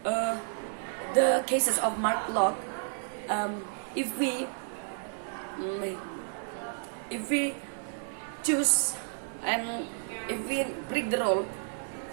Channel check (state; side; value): silent; left; digital silence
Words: the cases of Mark Locke. If we choose and if we break the rule,